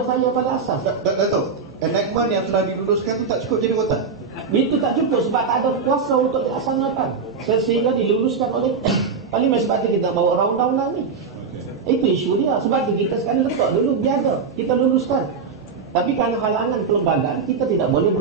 saya pada asas. Dato', enactment yang telah diluluskan tu tak cukup jadi rotan? Itu tak cukup sebab tak ada kuasa untuk dilaksanakan. Sehingga diluluskan oleh Parlimen. Sebab itu kita bawa undang-undang ni. Itu isu dia. Sebab itu kita sekarang letak dulu biasa kita luluskan. Tapi kerana halangan kelembagaan, kita tidak boleh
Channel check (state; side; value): quieter; left; 5.3 dB